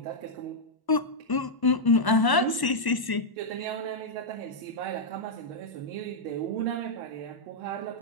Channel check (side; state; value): right; late; 1.0 ms